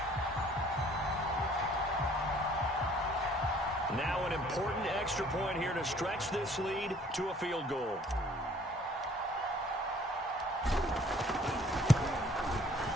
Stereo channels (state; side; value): normal; both; correlation 0.57